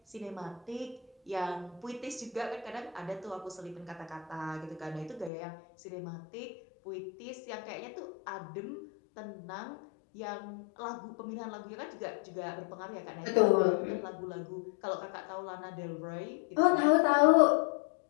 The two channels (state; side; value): drops out; right; at 5.3 s